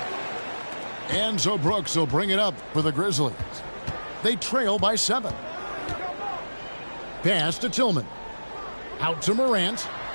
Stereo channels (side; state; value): both; inverted; correlation -1.00